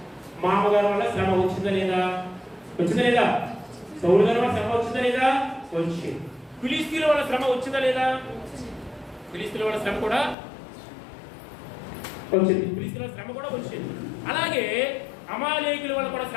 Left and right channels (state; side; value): drops out; right; at 10.4 s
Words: మామగారి వల్ల శ్రమ వచ్చిందా లేదా? సౌలు గారి వల్ల శ్రమ వచ్చిందా లేదా? వచ్చింది. ఫిలిస్తీన్ల వల్ల శ్రమ వచ్చిందా లేదా? ఫిలిస్తీన్ల వల్ల శ్రమ కూడా వచ్చింది. అలాగే అమాలేకీయుల వల్ల కూడా